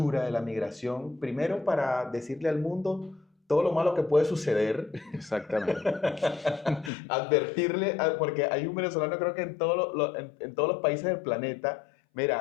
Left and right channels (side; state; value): right; drops out; at 6.9 s